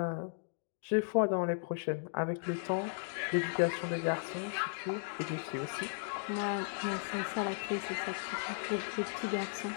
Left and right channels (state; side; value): silent; right; digital silence